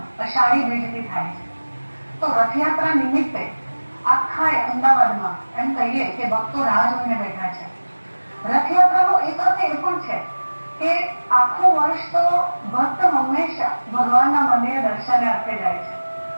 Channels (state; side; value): inverted; both; correlation -1.00